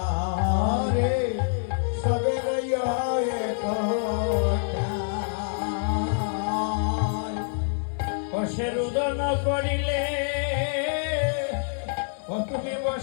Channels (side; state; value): right; silent; digital silence